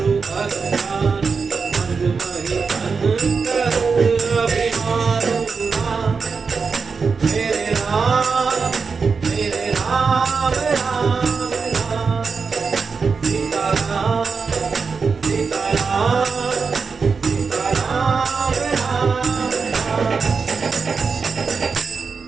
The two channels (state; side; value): quieter; left; 5.1 dB